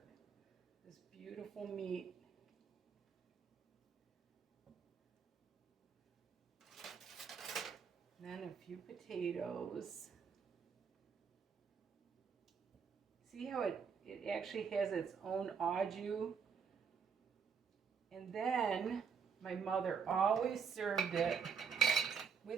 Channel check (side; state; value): left; quieter; 6.4 dB